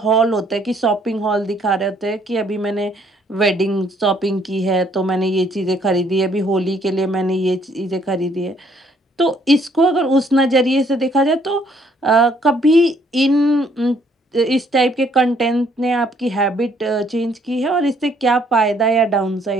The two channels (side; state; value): both; normal; correlation 0.66